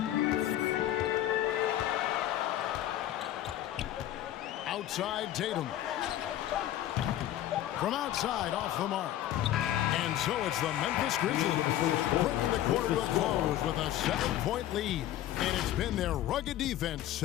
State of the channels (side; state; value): right; quieter; 12.9 dB